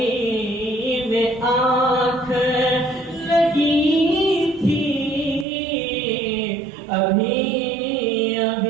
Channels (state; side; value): drops out; left; at 5.5 s